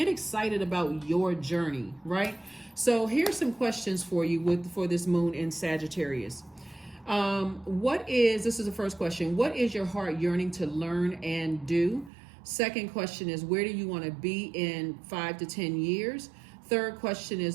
excited about your journey, right? So here's some questions for you for this moon in Sagittarius. This is the first question. What is your heart yearning to learn and do? Second question is, where do you want to be in 5 to 10 years? Third question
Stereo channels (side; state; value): left; drops out; at 12.1 s